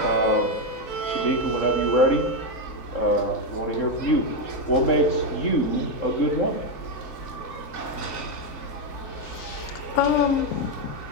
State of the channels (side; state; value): right; late; 3.2 ms